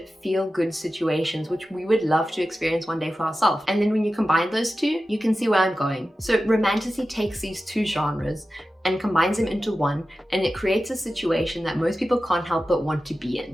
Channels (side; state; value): both; normal; correlation 0.93